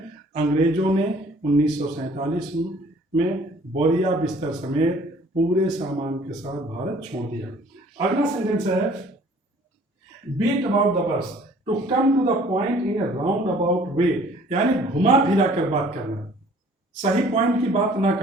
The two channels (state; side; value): normal; both; correlation 0.54